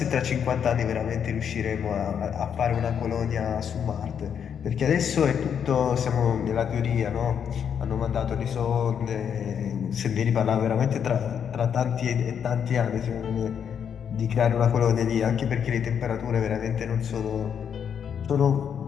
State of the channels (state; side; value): quieter; right; 7.9 dB